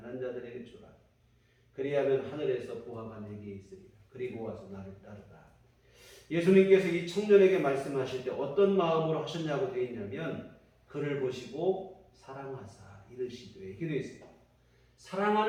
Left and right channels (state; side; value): identical; both; correlation 1.00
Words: 자들에게 주라. 그리하면 하늘에서 보화가 네게 있으리라. 그리고 와서 나를 따르라. 예수님께서 이 청년에게 말씀하실 때 어떤 마음으로 하셨냐고 되어 있냐면 그를 보시고 사랑하사 이르시되 이렇게 되어 있습니다.